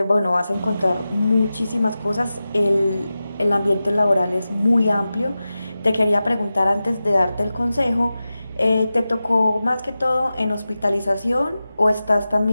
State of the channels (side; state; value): both; inverted; correlation -0.94